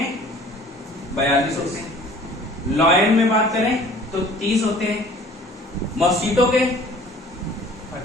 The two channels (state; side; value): normal; both; correlation 0.50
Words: 42 होते हैं। लॉयन में बात करें तो 30 होते हैं। मॉस्किटो के